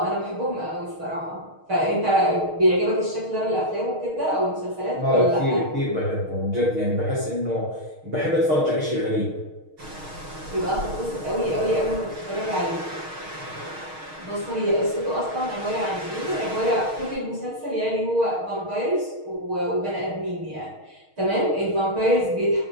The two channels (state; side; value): late; left; 6.4 ms